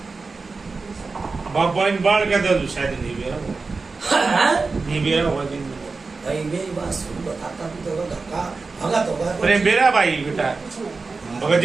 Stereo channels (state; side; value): quieter; left; 4.1 dB